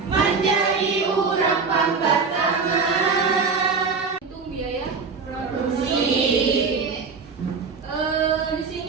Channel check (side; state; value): left; quieter; 5.0 dB